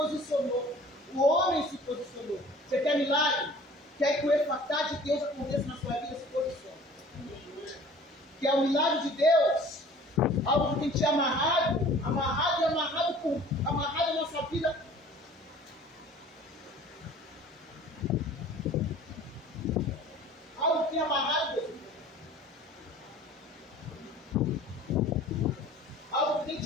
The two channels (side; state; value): both; normal; correlation 0.47